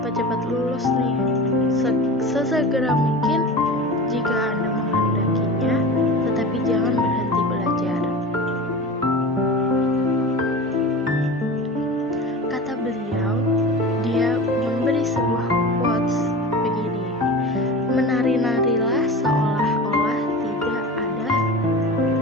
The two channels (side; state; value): both; normal; correlation 0.32